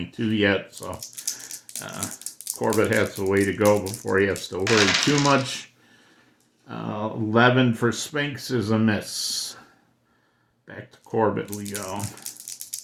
yet, so Corbett has a way to go before he has to worry too much. 11 for Spinks is a miss. Back to Corbett we go.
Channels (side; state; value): both; identical; correlation 1.00